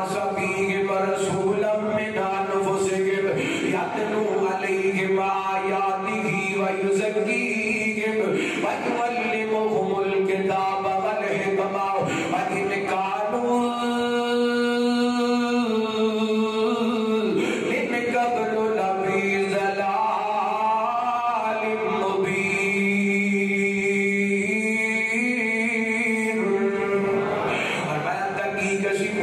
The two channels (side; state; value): both; identical; correlation 1.00